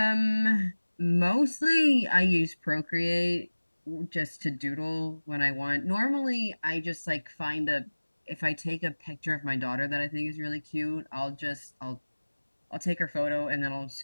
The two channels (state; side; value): inverted; both; correlation -1.00